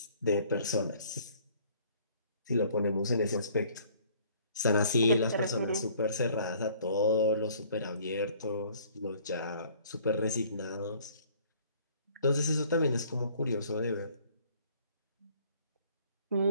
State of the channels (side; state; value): both; inverted; correlation -0.57